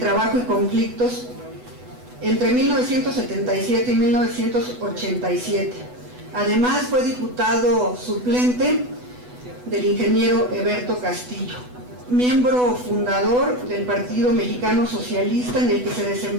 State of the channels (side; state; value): left; late; 8.1 ms